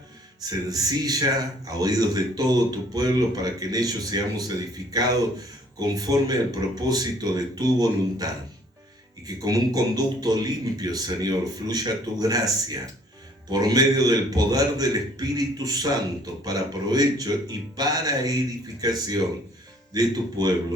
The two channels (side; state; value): both; normal; correlation 0.59